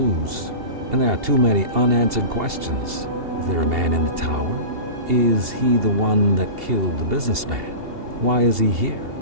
And there are too many unanswered questions. Is there a man in the tower? Is he the one that killed the businessman? Why is he here?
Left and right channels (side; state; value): left; late; 2.8 ms